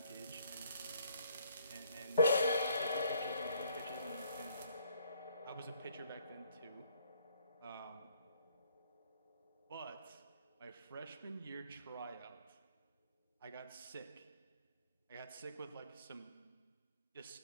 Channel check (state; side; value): inverted; both; correlation -0.65